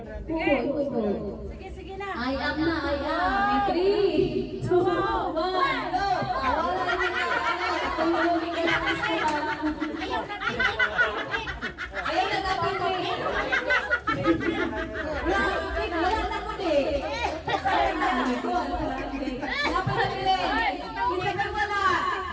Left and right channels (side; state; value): both; identical; correlation 1.00